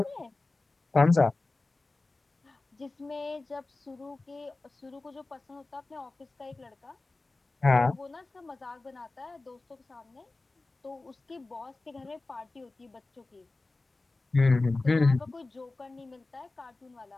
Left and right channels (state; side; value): quieter; right; 3.3 dB